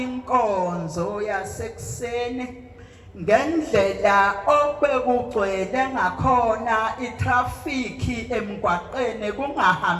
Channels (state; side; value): identical; both; correlation 1.00